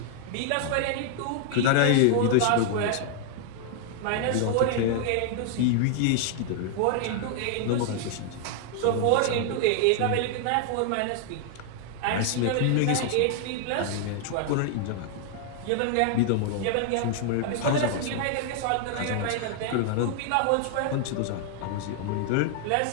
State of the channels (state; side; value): different; both; correlation 0.00